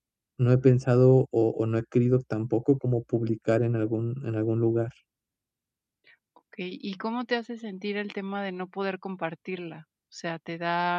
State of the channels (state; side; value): identical; both; correlation 1.00